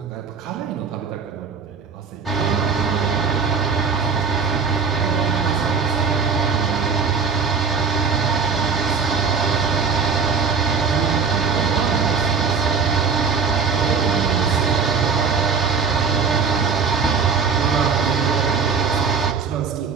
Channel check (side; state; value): left; quieter; 5.4 dB